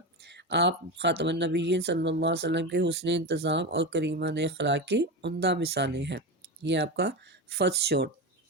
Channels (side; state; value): both; normal; correlation 0.19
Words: आप ख़ातमुन नबीयीन सल्लल्लाहु अलैहि वसल्लम के हुस्न इंतज़ाम और करीमान अखलाक की उम्दा मिसालें हैं। ये आपका फर्स्ट शॉट।